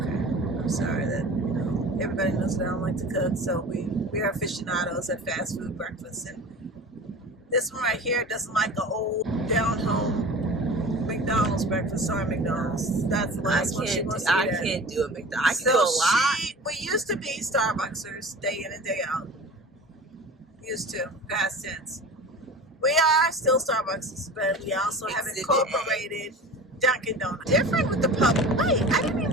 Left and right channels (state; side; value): normal; both; correlation 0.37